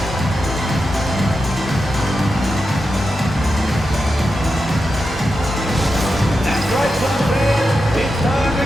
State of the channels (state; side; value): normal; both; correlation 0.89